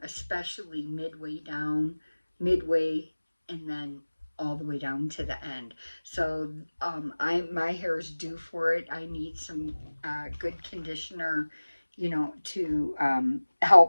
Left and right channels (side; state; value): both; inverted; correlation -1.00